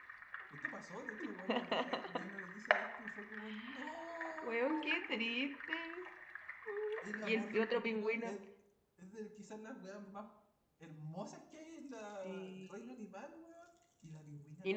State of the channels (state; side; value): identical; both; correlation 1.00